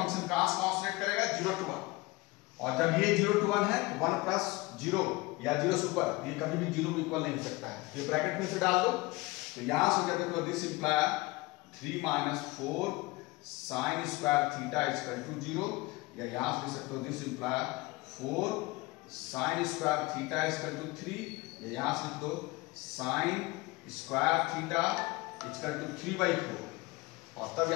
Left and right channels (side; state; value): right; quieter; 22.5 dB